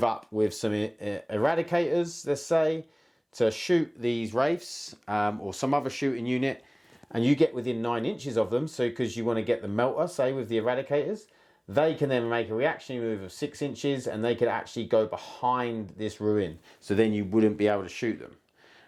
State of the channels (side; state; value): both; identical; correlation 1.00